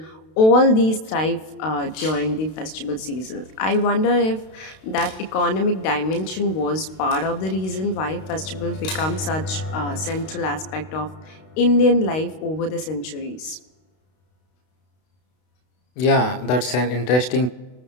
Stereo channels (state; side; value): late; right; 32 ms